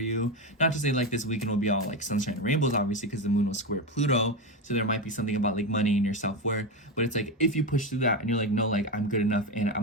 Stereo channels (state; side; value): normal; both; correlation 0.15